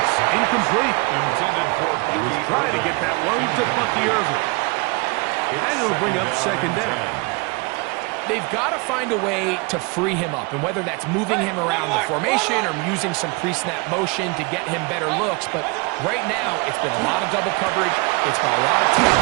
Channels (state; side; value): quieter; left; 28.6 dB